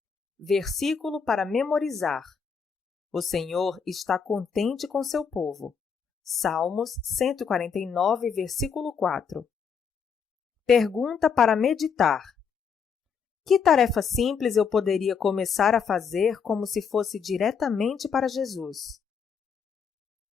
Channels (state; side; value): quieter; right; 6.4 dB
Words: Versículo para memorizar: o Senhor está contente com seu povo. Salmos 149, versículo 4. Pergunta para meditar: que tarefa simples eu poderia começar a fazer como se fosse diretamente para Jesus?